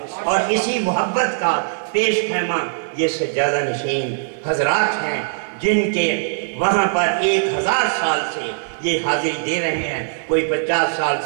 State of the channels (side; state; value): left; silent; digital silence